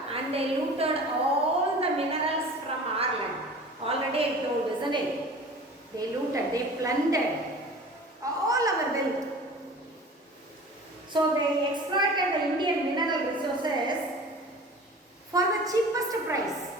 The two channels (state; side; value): normal; both; correlation 0.41